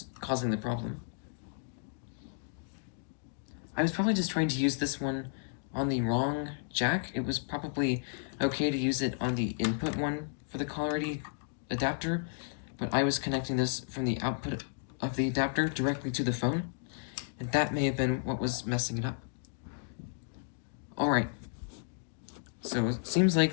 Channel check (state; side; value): silent; right; digital silence